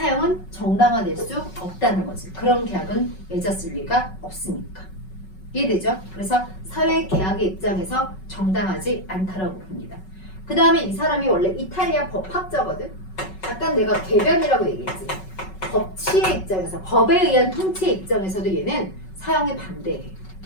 정당화될 수 없다는 거지. 그런 계약은 맺었을 리가 없으니까. 이해되죠? 그래서 사회계약의 입장에서 정당하지 않다라고 봅니다. 그 다음에 이 사람이 원래 이탈리아 법학자거든. 약간 내가 개변이라고 얘기했지. 법치의 입장에서, 법에 의한 통치의 입장에서도 얘는 사형에 반대해.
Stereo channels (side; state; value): right; late; 5.4 ms